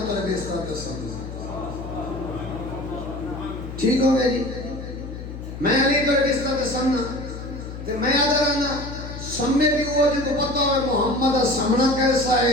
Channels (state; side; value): noise; left; hum, 10 dB below the sound